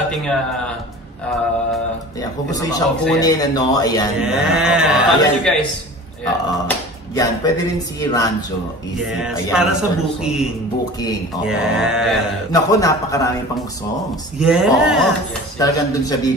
ating kung gusto nyo siyang kunin, ano, ayan. Follow nyo, guys. Yan, pwede rin si Ranjo. Yes, ayan, para sa booking. Booking, oo. Yes. Naku, napakarami pang songs. Yes. Oo. Talagang dun siya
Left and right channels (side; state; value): both; normal; correlation 0.39